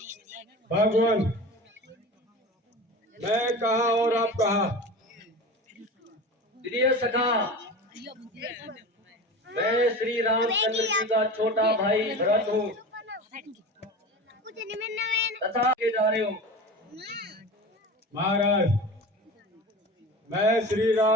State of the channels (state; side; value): normal; both; correlation 0.32